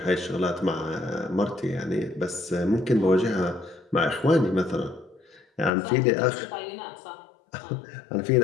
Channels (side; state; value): right; drops out; at 5.7 s